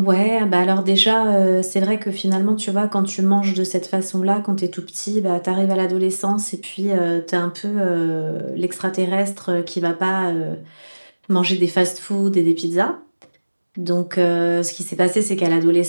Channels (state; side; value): inverted; both; correlation -1.00